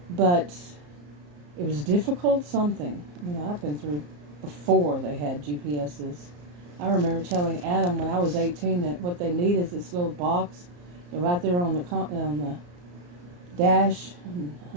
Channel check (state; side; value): late; left; 34 ms